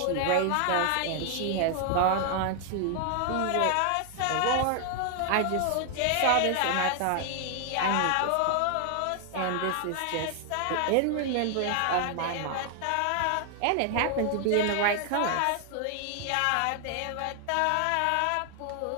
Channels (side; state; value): both; different; correlation 0.00